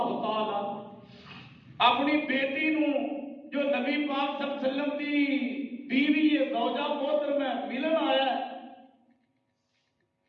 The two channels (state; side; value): identical; both; correlation 1.00